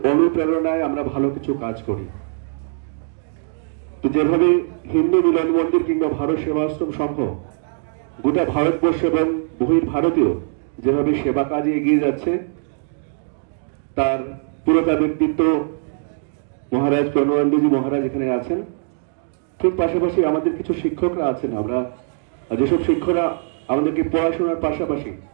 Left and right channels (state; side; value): silent; left; digital silence